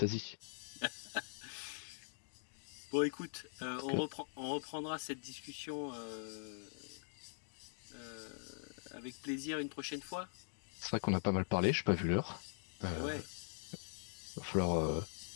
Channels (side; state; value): right; silent; digital silence